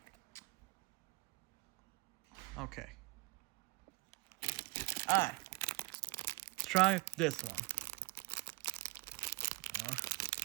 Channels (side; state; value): left; quieter; 24.0 dB